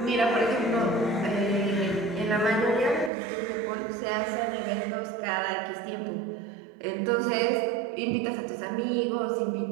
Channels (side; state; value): left; drops out; at 3.1 s